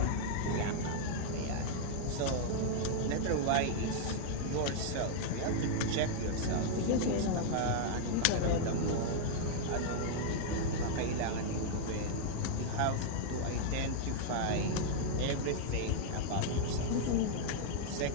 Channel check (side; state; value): both; different; correlation -0.01